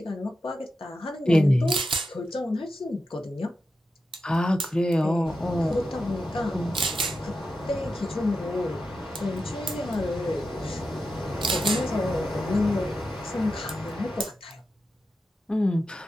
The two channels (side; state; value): both; normal; correlation 0.89